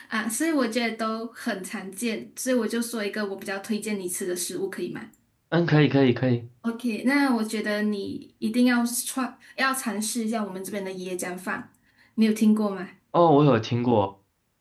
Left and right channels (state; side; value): identical; both; correlation 1.00